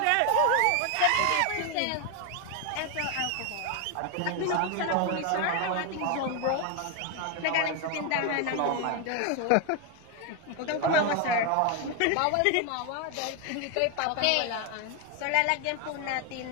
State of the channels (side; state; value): both; different; correlation 0.01